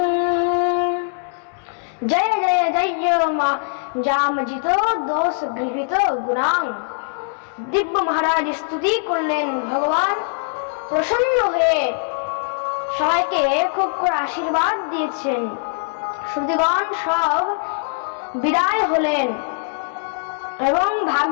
जय जय जय जामजित दोष गृहीत गुणां। দিব্য মহারাজ স্তুতি করলেন, ভগবান প্রসন্ন হয়ে সবাইকে খুব করে আশীর্বাদ দিয়েছেন। শ্রুতিগণ সব বিদায় হলেন এবং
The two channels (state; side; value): silent; right; digital silence